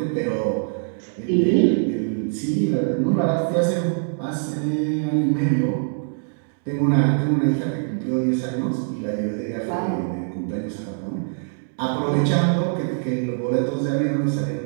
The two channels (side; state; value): left; silent; digital silence